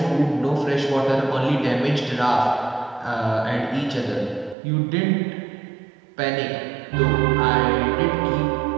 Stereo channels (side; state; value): left; drops out; at 4.5 s